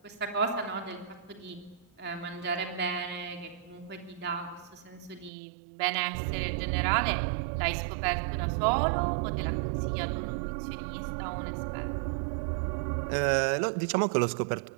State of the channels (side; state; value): left; drops out; at 5.3 s